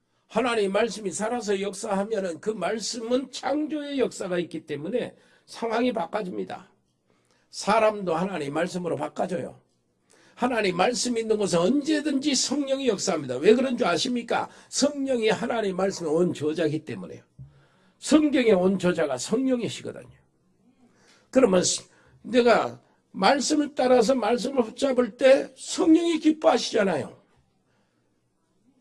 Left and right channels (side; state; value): both; identical; correlation 1.00